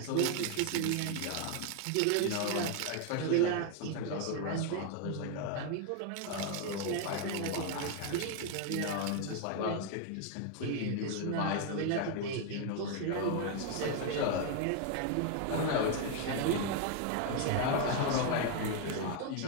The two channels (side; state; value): both; different; correlation 0.01